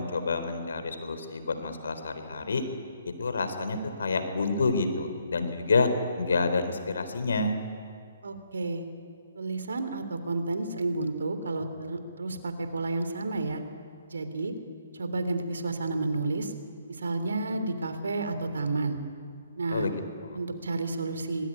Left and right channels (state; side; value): inverted; both; correlation -0.75